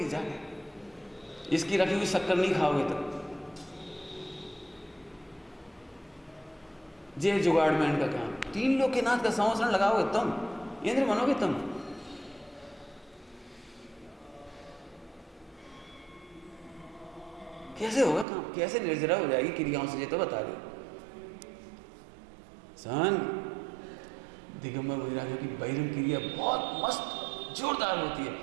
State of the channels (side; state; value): left; drops out; at 18.2 s